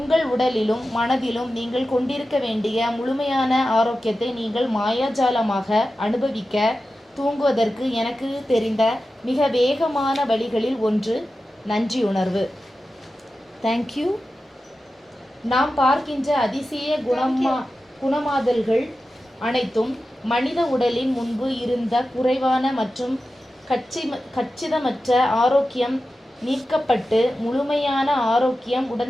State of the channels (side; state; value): both; normal; correlation 0.93